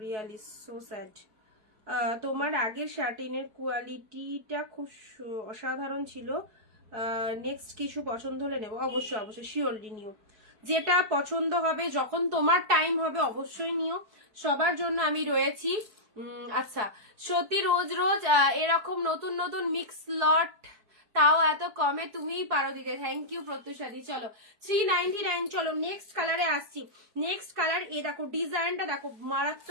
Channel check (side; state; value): left; late; 4.6 ms